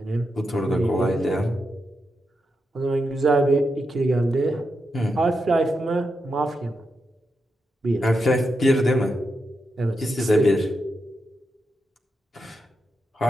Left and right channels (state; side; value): normal; both; correlation 0.86